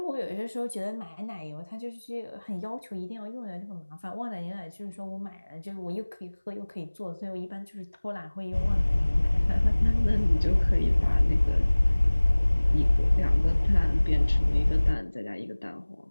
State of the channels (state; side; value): inverted; both; correlation -1.00